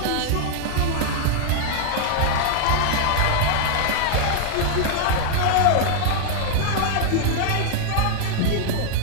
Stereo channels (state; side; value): different; both; correlation 0.00